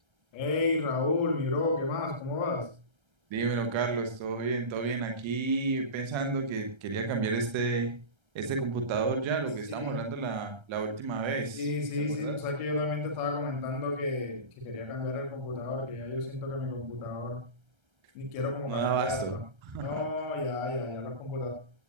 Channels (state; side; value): late; left; 1.3 ms